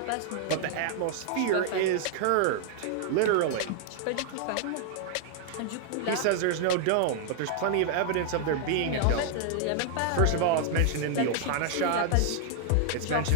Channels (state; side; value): different; both; correlation 0.00